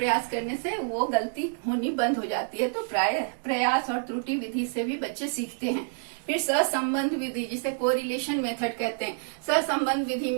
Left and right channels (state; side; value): silent; left; digital silence